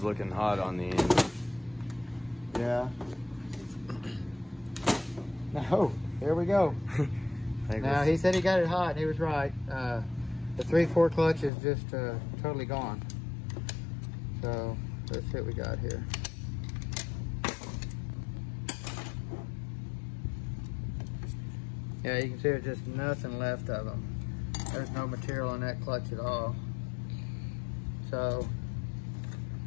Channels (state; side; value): drops out; right; at 11.5 s